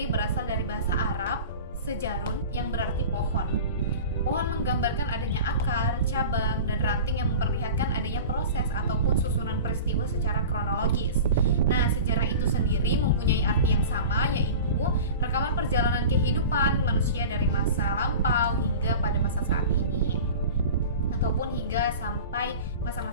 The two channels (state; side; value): inverted; both; correlation -0.35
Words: berasal dari bahasa Arab, sejarun, yang berarti pohon. Pohon menggambarkan adanya akar, cabang, dan ranting yang memperlihatkan adanya proses ataupun susunan peristiwa secara kronologis. Nah, sejarah itu sendiri mempunyai arti yang sama, yaitu rekaman perjalanan kehidupan manusia dari masa lampau hingga pada masa saat ini, ataupun hingga sampai